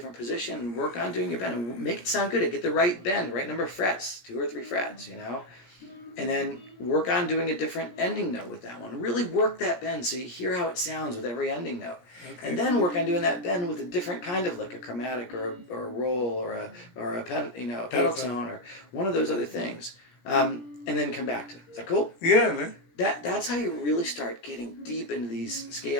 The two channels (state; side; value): late; right; 17 ms